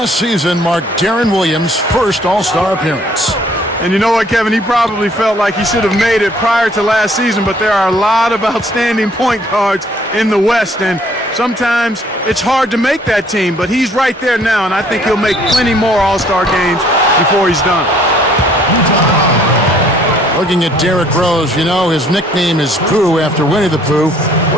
season marked Deron Williams' first All-Star appearance. And you know what, Kevin? He probably felt like he should have made it prior to last season, but there are a lot of outstanding point guards in the West, and sometimes it's hard to make that team, but he's right there now, and I think he'll make plenty more All-Star games before he's done. Looking at Derrick Rose, you know, his nickname is Pooh after Winnie the Pooh.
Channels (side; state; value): both; normal; correlation 0.60